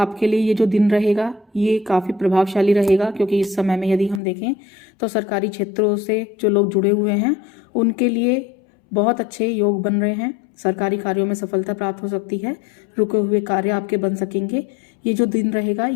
लिए ये जो दिन रहेगा ये काफ़ी प्रभावशाली रहेगा, क्योंकि इस समय में यदि हम देखें तो सरकारी क्षेत्रों से जो लोग जुड़े हुए हैं उनके लिए बहुत अच्छे योग बन रहे हैं। सरकारी कार्यों में सफलता प्राप्त हो सकती है, रुके हुए कार्य आपके बन सकेंगे। ये जो दिन रहेगा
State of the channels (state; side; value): drops out; right; at 4.2 s